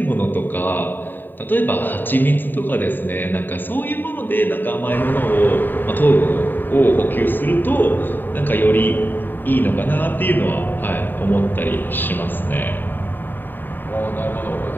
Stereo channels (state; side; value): late; right; 0.092 ms